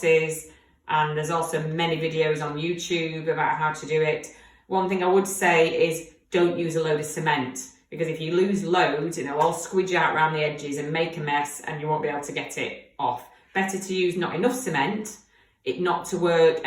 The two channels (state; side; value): identical; both; correlation 1.00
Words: And there's also many videos on YouTube about how to do it. One thing I would say is don't use a load of cement, because if you lose loads, it'll all squidge out around the edges and make a mess and you won't be able to get it off. Better to use not enough cement, it not to work,